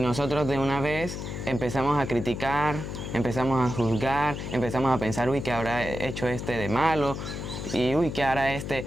nosotros de una vez empezamos a criticar, empezamos a juzgar, empezamos a pensar, uy, ¿qué habrá hecho este de malo? Y uy, ¿qué hará este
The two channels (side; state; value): left; noise; hum, 6 dB below the sound